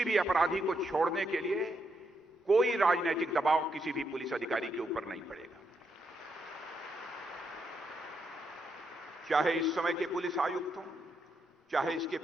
भी अपराधी को छोड़ने के लिए कोई राजनीतिक दबाव किसी भी पुलिस अधिकारी के ऊपर नहीं पड़ेगा। चाहे इस समय के पुलिस आयुक्त हों, चाहे इसके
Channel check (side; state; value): both; normal; correlation 0.80